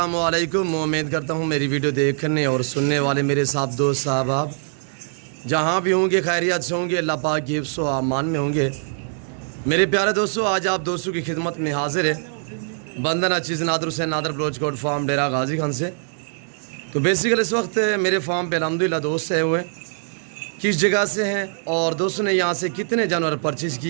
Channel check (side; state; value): left; silent; 64 dB below the other